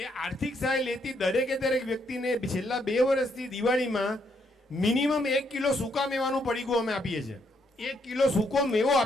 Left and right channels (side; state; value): both; normal; correlation 0.74